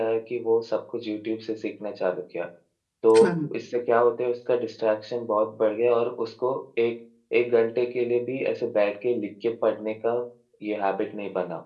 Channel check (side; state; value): both; identical; correlation 1.00